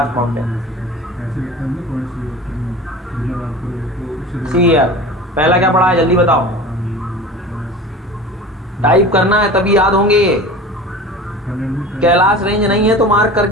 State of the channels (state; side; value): normal; both; correlation 0.36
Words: माउंटेन। ऐसे लगता है ना कौन सी मतलब आपको सी यार, पहला क्या पढ़ा है जल्दी बताओ? टाइप करना है तभी याद होंगे ये। कैलाश रेंज नहीं है तो मार्क